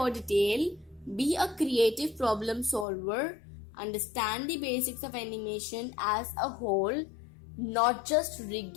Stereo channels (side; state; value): right; drops out; at 2.9 s